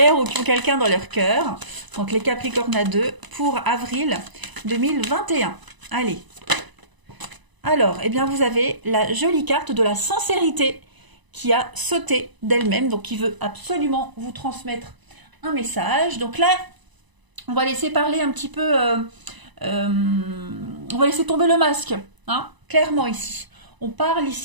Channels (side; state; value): left; late; 1.0 ms